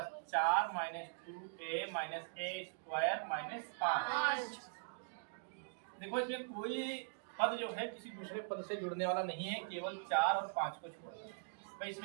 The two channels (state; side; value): silent; left; digital silence